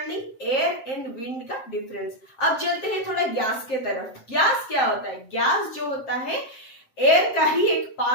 एयर एंड विंड का डिफरेंस। अब चलते हैं थोड़ा गैस के तरफ। गैस क्या होता है, गैस जो होता है एयर का ही एक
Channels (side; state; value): right; late; 7.5 ms